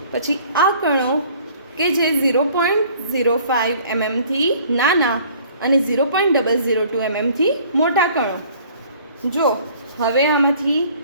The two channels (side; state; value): both; inverted; correlation -0.54